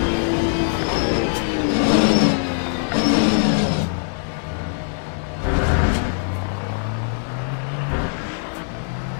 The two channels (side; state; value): right; silent; 57 dB below the other